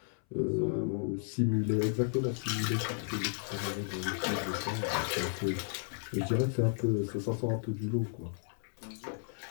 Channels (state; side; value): silent; right; 55 dB below the other